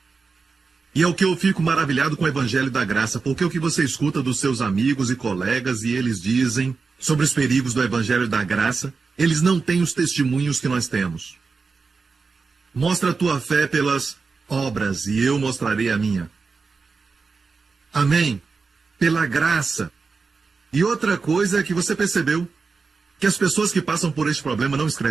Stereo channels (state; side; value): quieter; left; 4.6 dB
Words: E é o que eu fico maravilhado com o Evangelho da Graça, porque o que você escuta dos seus amigos e colegas e eles dizem sobre os perigos do Evangelho da Graça, eles não têm os testemunhos que nós temos. Mostra a tua fé pelas obras e eu mostrarei a minha. Amém? Pela graça. E outra coisa é que você percebeu que as pessoas que passam por este problema não